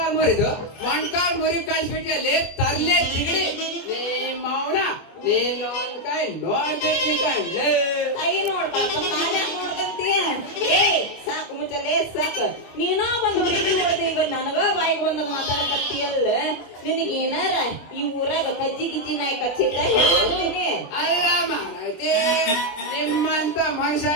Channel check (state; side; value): late; right; 24 ms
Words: ಮುರಿದು ಮಣ್ಕಾಲ್ ಮುರಿ ಕಳ್ಸ್ಬಿಟ್ಟಲ್ಲಿ ತರ್ಲೆ ತಿಗಡಿ ನಿಮ್ಮ ಅವನ ನೀನು ಕೈ ನೋಡ್ಬೇಕು ಕಣ್ಲೆ ಕೈ ನೋಡ್ಬೇಕು ನೋಡ್ದಂತೀಯ ಏ ಸಾಕು ಮುಚ್ಚಲೇ ಸಾಕು ನೀನೋ ಬಂದು ಹುಡುಗಿ ಹೊಡೆದ ಬಂದ್ ನನಗ ಬಾಯಿಗೆ ಬಂದಾಗ ಮಾತಾಡಕತ್ತೀಯಲ್ಲ ನಿನಗೇನಾರ ಈ ಊರಾಗ ಕಜ್ಜಿ ಗಿಜ್ಜಿ ನಾಯಿ ಕಚ್ಚಿದ್ದ ಹೇಳ್ತೀನಿ ಅಲ್ಲ ಮಾನೈತಿ ನಿಮ್ಮಂತ ಮನುಷ್ಯ